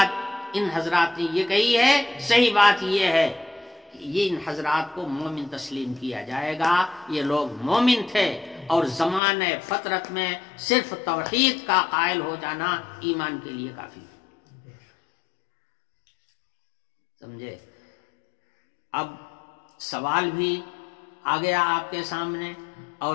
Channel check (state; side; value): drops out; right; at 9.2 s